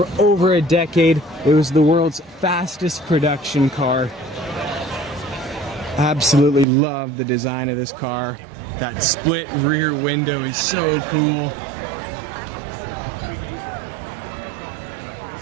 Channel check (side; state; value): left; drops out; at 6.7 s